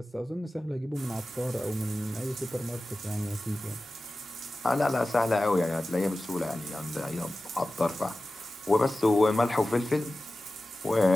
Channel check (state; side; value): normal; both; correlation 0.95